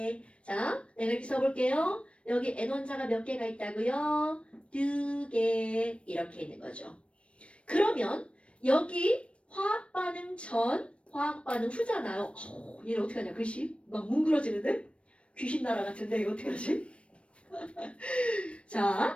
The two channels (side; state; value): right; late; 0.060 ms